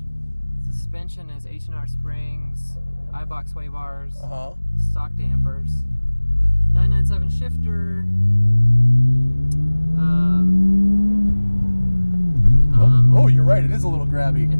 Suspension is H&R springs, iBox sway bars, stock dampers, 997 shifter. Oh, you're right. It is a little grabby.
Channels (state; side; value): inverted; both; correlation -1.00